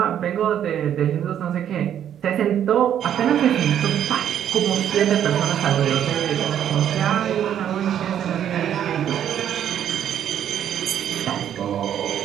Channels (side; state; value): left; quieter; 9.9 dB